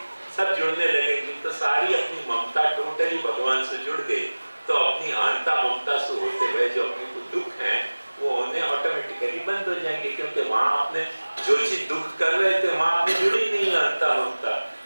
सब जुड़ने लगेंगी, तो सारी अपनी ममता टोटली भगवान से जुड़ गई। तो अपनी अहंता ममता से होते हुए जो अपने को दुख है वो होने ऑटोमेटिकली बंद हो जाएंगे, क्योंकि वहां आपने जो चीज दुख कर रहे थे वहां आपने जुड़ी नहीं है अहंता ममता।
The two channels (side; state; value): both; inverted; correlation -1.00